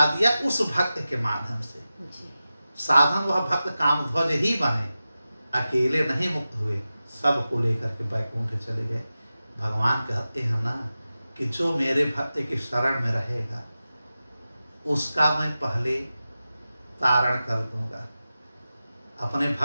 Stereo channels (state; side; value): inverted; both; correlation -0.94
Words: दिया उस भक्त के माध्यम से। साधन वह भक्त कामध्वज ही बने, अकेले नहीं मुक्त हुए, सबको लेकर के बैकुंठ चले गए। भगवान कहते हैं ना कि जो मेरे भक्त की शरण में रहेगा उसका मैं पहले तारण कर दूंगा। अपने